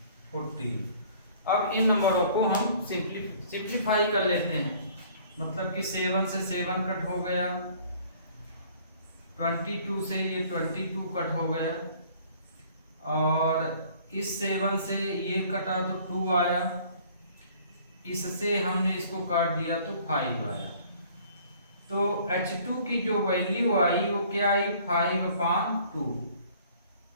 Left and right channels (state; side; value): inverted; both; correlation -0.54